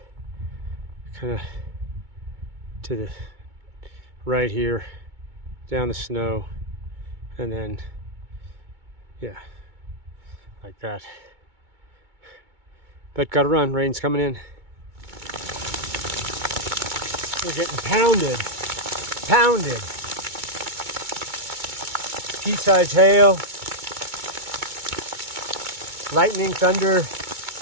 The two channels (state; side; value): late; left; 2.2 ms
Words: kind of to the right here, down the snow, and then, yeah, like that. But gotta run, rain's coming in. We're getting pounded. Pounded. Pea-sized hail. Lightning, thunder.